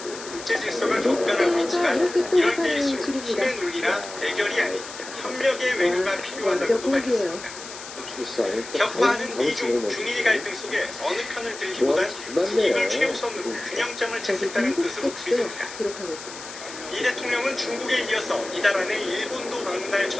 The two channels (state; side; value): noise; left; hiss, 13 dB below the sound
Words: 국제 질서가 격변하고 있지만 이럴 때일수록 힘의 논리나 대결이 아닌 협력의 외교가 필요하다고도 말했습니다. 격화하는 미중, 중일 갈등 속에 어느 편을 들기보단 국익을 최우선으로 균형점을 찾겠다는 뜻으로 풀이됩니다. 이 대통령은 중국에 이어서 이달 안에 일본도 방문할